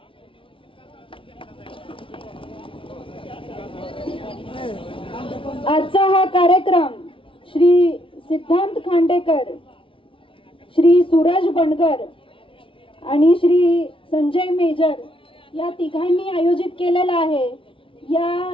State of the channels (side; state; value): right; late; 0.25 ms